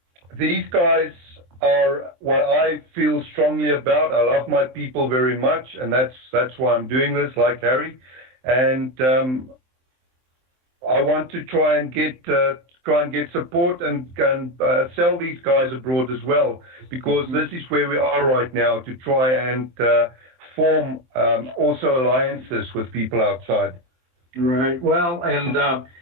these guys are what I feel strongly about. I love my people very much, and that's why I'm doing this, like Harry. And I want to try and get support and sell these guys abroad as well, because this is where we are right now, to try and form also alliances with people outside. Right. Well, and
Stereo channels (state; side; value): late; left; 23 ms